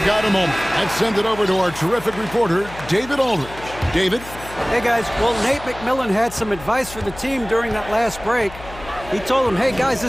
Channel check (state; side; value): noise; left; hum, 16 dB below the sound